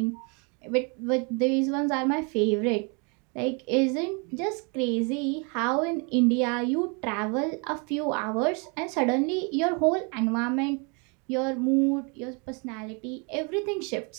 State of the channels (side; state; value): left; quieter; 34.0 dB